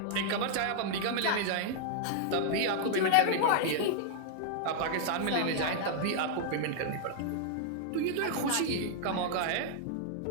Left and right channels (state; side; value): different; both; correlation -0.01